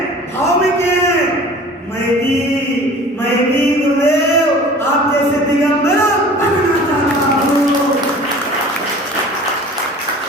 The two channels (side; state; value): both; normal; correlation 0.44